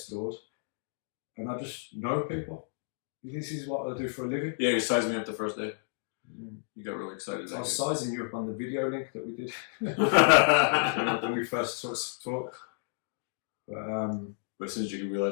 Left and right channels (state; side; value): silent; right; digital silence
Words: doors, and I just know people. This is what I do for a living. Yeah, you sized me up the first day. You got really excited. I was sizing you up on the video link that we did when we first talked. But as soon as you